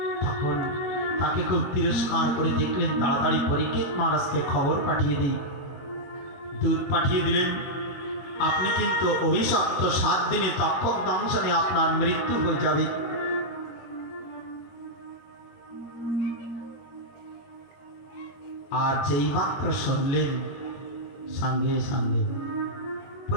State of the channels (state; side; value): late; right; 21 ms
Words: তখন তাকে খুব তিরস্কার করে দেখলেন। তাড়াতাড়ি পরীক্ষিত মহারাজকে খবর পাঠিয়ে দিই। দূত পাঠিয়ে দিলেন, আপনি কিন্তু অভিশপ্ত, 7 দিনে তক্ষক দংশনে আপনার মৃত্যু হয়ে যাবে। আর যেই মাত্র শুনলেন, সঙ্গে সঙ্গে